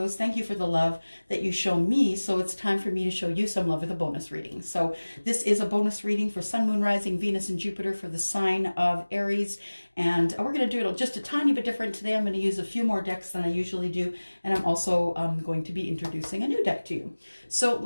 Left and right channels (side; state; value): both; inverted; correlation -1.00